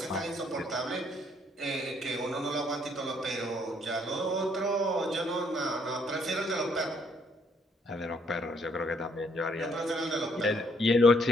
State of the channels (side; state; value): both; normal; correlation 0.68